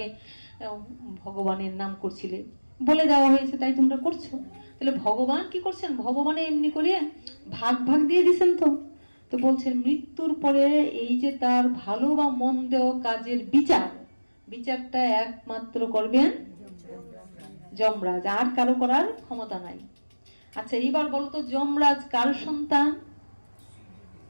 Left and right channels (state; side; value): inverted; both; correlation -1.00